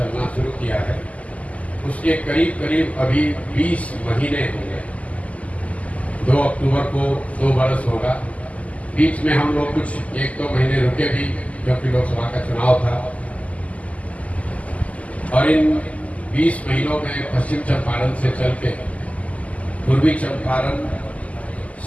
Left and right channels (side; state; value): right; late; 0.070 ms